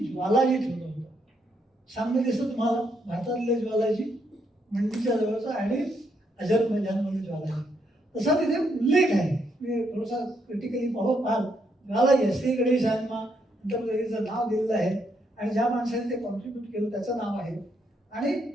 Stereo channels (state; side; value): normal; both; correlation 0.76